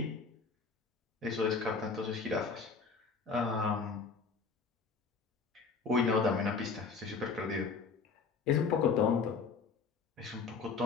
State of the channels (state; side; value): quieter; right; 5.0 dB